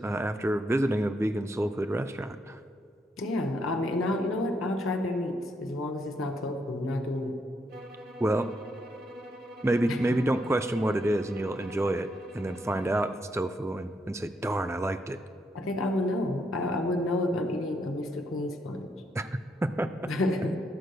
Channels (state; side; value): normal; both; correlation 0.77